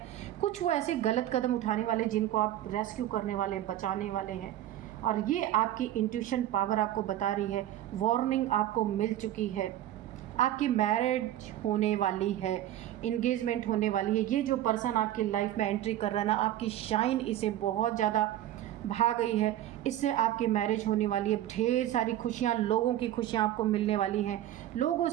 कुछ वो ऐसे गलत कदम उठाने वाले जिनको आप रेस्क्यू करने वाले, बचाने वाले हैं। और ये आपकी इंट्यूशन पावर आपको बता रही है, वार्निंग आपको मिल चुकी है। आपकी मैरिज होने वाली है, इंगेजमेंट होने वाली है। ये जो पर्सन आपकी लाइफ में एंट्री कर रहा है ना, आपकी शाइन इसे बहुत ज़्यादा भा गई है, इससे आपकी मैरिज होने वाली है। ढेर सारी खुशियाँ, लोगों की खुशियाँ आपको मिलने वाली हैं, लोगों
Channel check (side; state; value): left; quieter; 12.9 dB